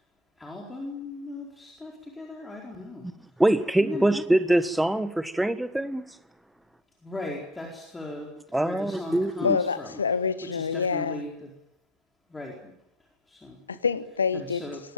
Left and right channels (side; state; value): both; normal; correlation 0.48